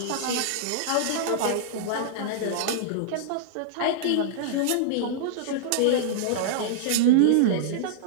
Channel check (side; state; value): both; different; correlation -0.02